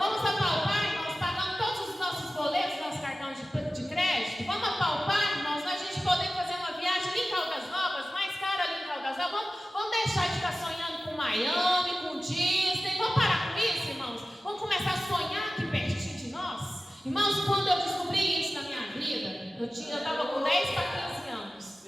apalpar, irmãos, pagando todos os nossos boletos, nosso cartão de crédito? Vamos apalpar, irmãos, a gente poder fazer uma viagem ali em Caldas Novas, mais cara ali em Caldas Novas. Vamos deixar de ficar sonhando com Miami, com Disney. Vamos parar com isso, irmãos? Vamos começar a sonhar aqui pertinho de nós? Irmãos, quando eu descobri isso na minha vida, eu estava com 10 para 15 anos.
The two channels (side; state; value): both; normal; correlation 0.95